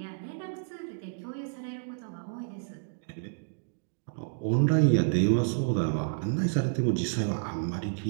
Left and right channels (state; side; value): silent; left; digital silence